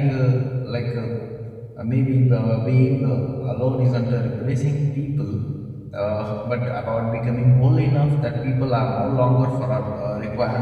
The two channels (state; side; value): identical; both; correlation 1.00